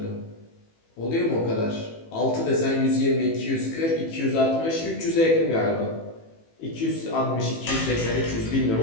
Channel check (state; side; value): late; right; 18 ms